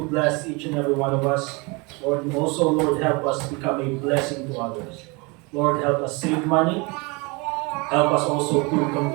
bless each and every one of us. Lord, and also, Lord, help us become a blessing to others. Lord, help us save money. Help us also to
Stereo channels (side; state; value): left; quieter; 28.1 dB